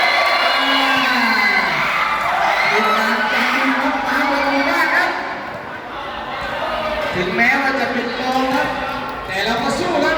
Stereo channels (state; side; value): identical; both; correlation 1.00